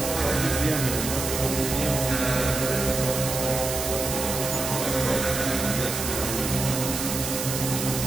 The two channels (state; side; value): noise; right; hiss, 4 dB below the sound